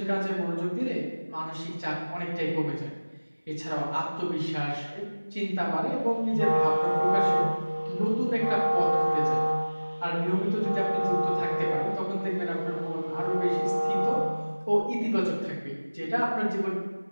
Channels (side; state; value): both; inverted; correlation -1.00